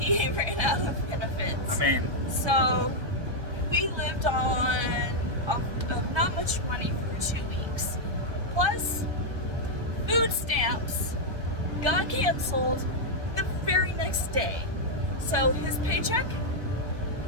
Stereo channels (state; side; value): late; left; 1.2 ms